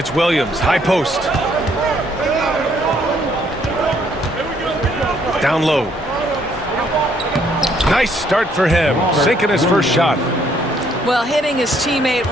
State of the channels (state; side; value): normal; both; correlation 0.67